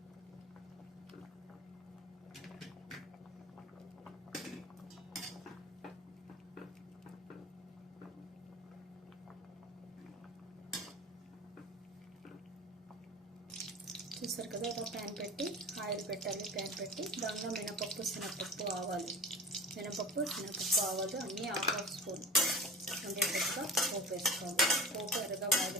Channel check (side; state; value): both; normal; correlation 0.35